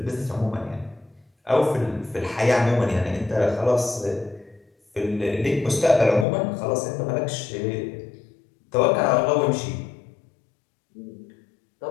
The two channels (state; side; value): drops out; right; at 6.2 s